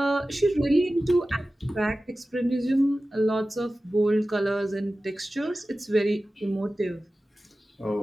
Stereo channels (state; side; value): normal; both; correlation 0.95